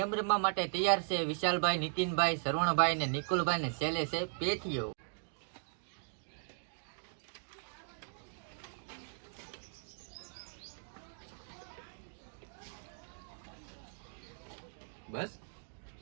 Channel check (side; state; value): left; silent; 52 dB below the other